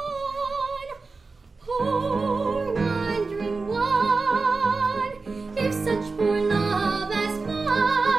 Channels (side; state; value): left; quieter; 4.0 dB